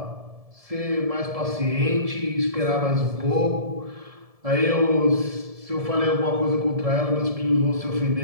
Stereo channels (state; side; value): late; left; 1.7 ms